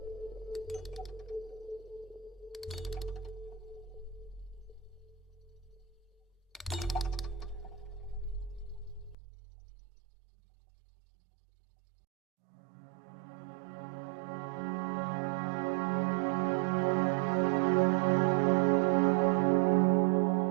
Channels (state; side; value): drops out; left; at 9.2 s